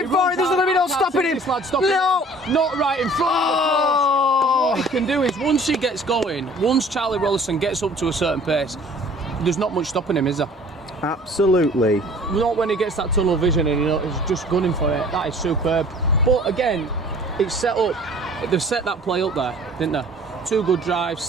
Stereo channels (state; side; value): normal; both; correlation 0.50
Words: forward. There's going to be no stopping him. No, not right in front of the What he can do is once he gets going, once Charlie Rollison gets up to a certain pace, there's not much stopping him, is there? Absolutely. Not when he gets that tunnel vision and he's just gunning for it. That is superb. But again, it's set up. They've set that play up there, didn't they? 2 good drives,